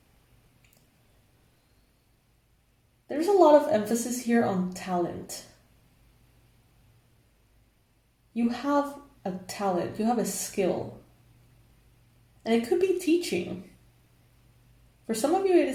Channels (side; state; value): both; identical; correlation 1.00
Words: There's a lot of emphasis here on talent. You have a talent, you have a skill. And it could be teaching. For some of you, it